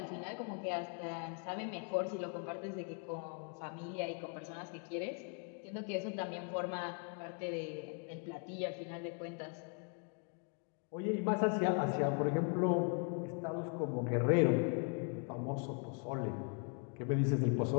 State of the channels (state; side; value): quieter; right; 38.9 dB